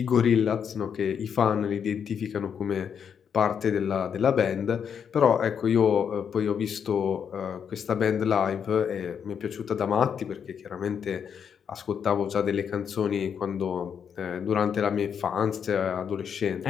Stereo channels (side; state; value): right; quieter; 7.5 dB